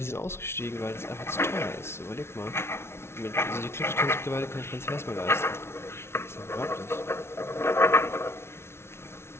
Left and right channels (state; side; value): late; right; 0.12 ms